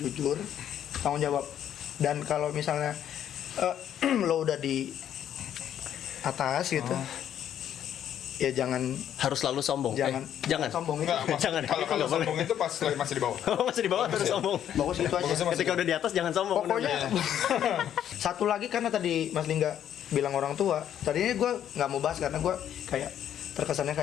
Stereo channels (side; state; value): right; quieter; 10.2 dB